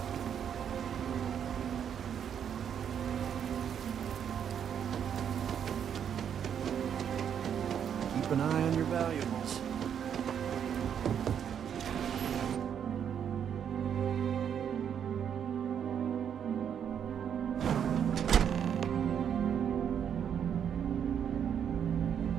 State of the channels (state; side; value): quieter; left; 8.4 dB